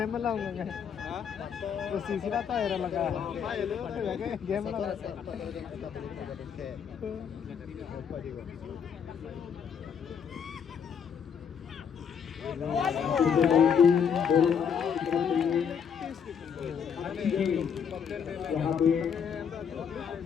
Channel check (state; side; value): quieter; right; 7.3 dB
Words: लाऊंगा तो सीसी रहता है लगा गेम लगा यहाँ पे